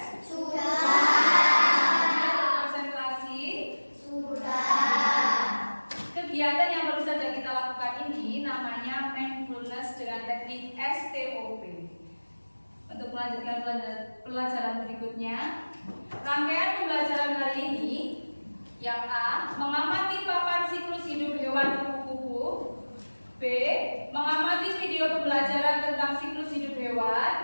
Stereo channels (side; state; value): both; inverted; correlation -1.00